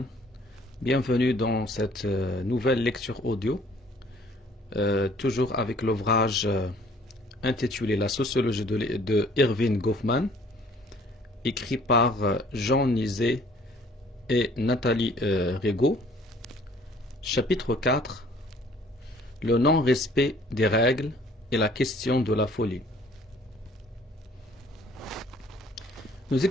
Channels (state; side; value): normal; both; correlation 0.56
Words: Bienvenue dans cette nouvelle lecture audio, toujours avec l'ouvrage intitulé La sociologie de Erving Goffman, écrit par Jean Nizet et Nathalie Rigaud. Chapitre 4, le non-respect des règles et la question de la folie. Nous